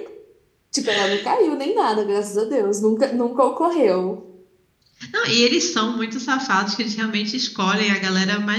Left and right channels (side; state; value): both; identical; correlation 1.00